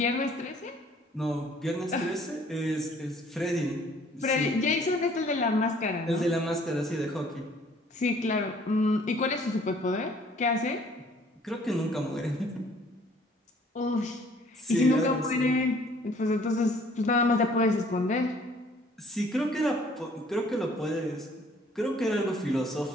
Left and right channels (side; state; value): both; normal; correlation 0.58